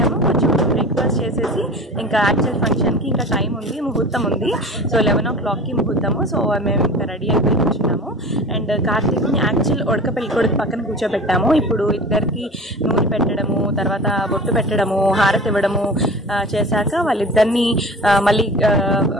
కొంచెం బ్రేక్ఫాస్ట్ చేసేసి ఇంకా యాక్చువల్ ఫంక్షన్కి ఇంకా టైం ఉంది, ముహూర్తం ఉంది. సో 11 o'clockకి ముహూర్తము. సో మేము ఇంకా రెడీ అయిపోయి కూర్చున్నాము. అండ్ కార్తీక్ని యాక్చువల్ ఉడక పెళ్లి కొడుకు పక్కన కూర్చోబెట్టాము. ఇప్పుడు ఇద్దరికి నూనె పెట్టడము, తర్వాత బొట్టు పెట్టడము, హారతి ఇవ్వడము చేశాక వాళ్ళిద్దరిని మళ్ళీ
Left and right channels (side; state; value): both; normal; correlation 0.37